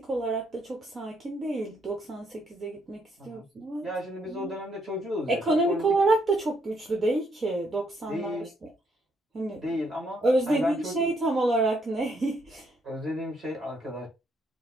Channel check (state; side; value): normal; both; correlation 0.73